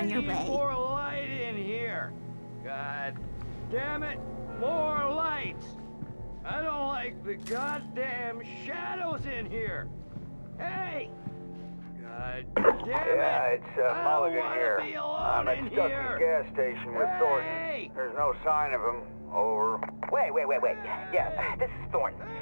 your way. More light in here. God damn it, more lights. I don't like the goddamn shadows in here. Hey! God damn it! Yeah, it's Mulligan here. I'm at Stuckey's here. gas station with Thornton. Hey! There's no sign of him. Over. Wait. Yeah, this is Thornton.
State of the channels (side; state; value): both; inverted; correlation -1.00